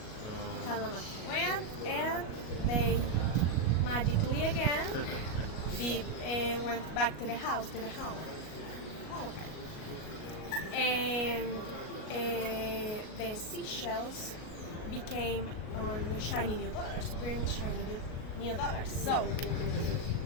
Kalamaki went, and they magically again went back to the home. Oh, okay. And the seashells became on shiny new dollars, bring shiny new dollars. So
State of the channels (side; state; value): right; late; 37 ms